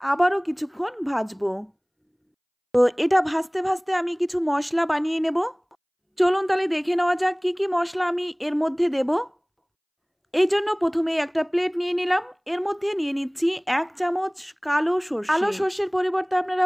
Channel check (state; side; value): identical; both; correlation 1.00